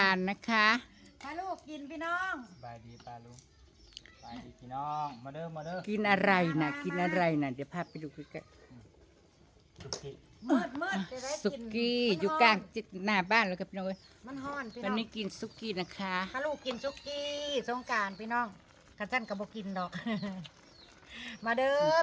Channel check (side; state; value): both; identical; correlation 1.00